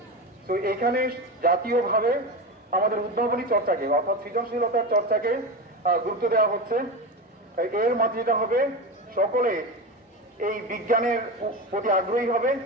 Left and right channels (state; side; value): normal; both; correlation 0.21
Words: তো এখানে জাতীয়ভাবে আমাদের উদ্ভাবনী চর্চাকে অর্থাৎ সৃজনশীলতার চর্চাকে গুরুত্ব দেওয়া হচ্ছে। এর মাধ্যমে যেটা হবে, সকলে এই বিজ্ঞানের প্রতি আগ্রহী হবে,